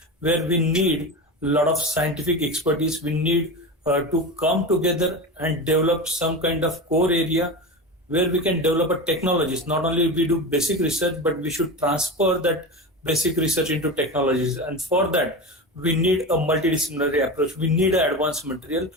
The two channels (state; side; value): normal; both; correlation 0.25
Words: where we need a lot of scientific expertise. We need to come together and develop some kind of core area where we can develop a technologies. Not only we do basic research, but we should transfer that basic research into technologies. And for that, we need a multidisciplinary approach. We need an advanced material,